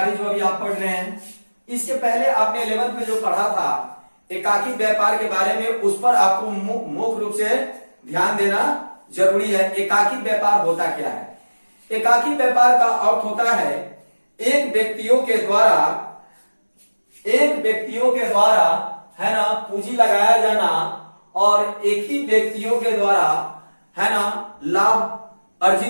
जो अभी आप पढ़ रहे हैं, इसके पहले आपने 11th में जो पढ़ा था एकाकी व्यापार के बारे में, उस पर आपको मुख्य रूप से ध्यान देना जरूरी है। एकाकी व्यापार होता क्या है? एकाकी व्यापार का अर्थ होता है एक व्यक्तियों के द्वारा है ना पूंजी लगाया जाना और एक ही व्यक्तियों के द्वारा है ना लाभ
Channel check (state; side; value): inverted; both; correlation -1.00